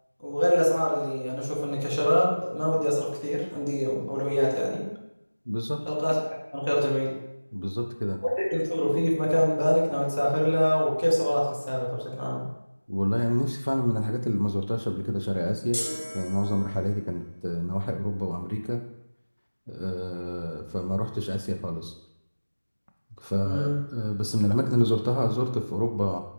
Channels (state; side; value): inverted; both; correlation -1.00